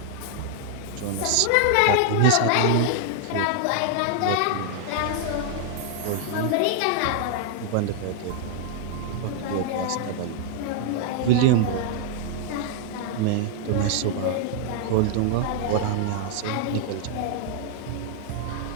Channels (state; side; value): different; both; correlation 0.00